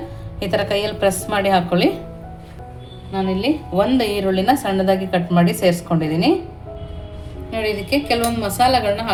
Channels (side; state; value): both; identical; correlation 1.00